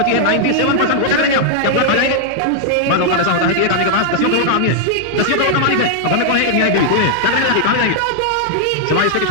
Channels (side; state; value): both; different; correlation -0.01